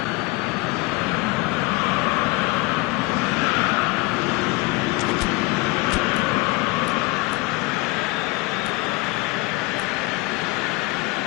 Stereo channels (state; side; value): quieter; right; 22.8 dB